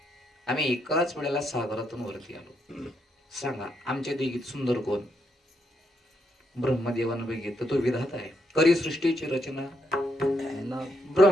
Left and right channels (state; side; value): normal; both; correlation 0.78